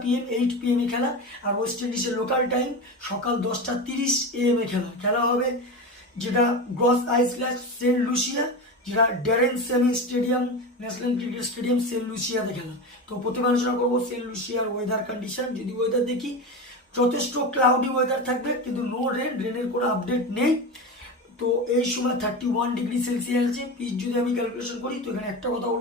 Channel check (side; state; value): both; normal; correlation 0.23